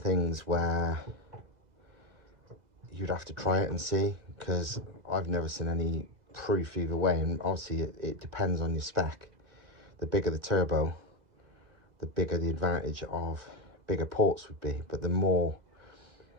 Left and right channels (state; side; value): late; left; 2.0 ms